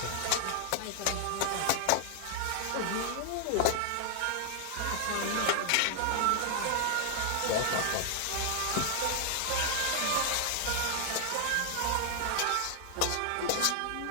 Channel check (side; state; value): both; different; correlation 0.00